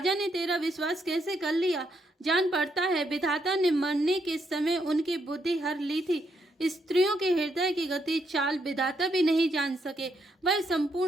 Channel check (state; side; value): normal; both; correlation 0.77